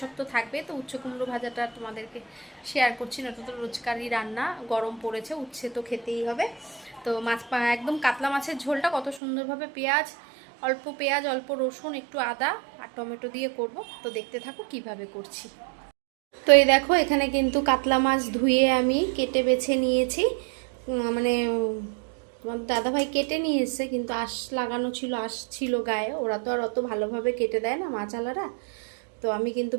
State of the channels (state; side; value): drops out; left; at 9.2 s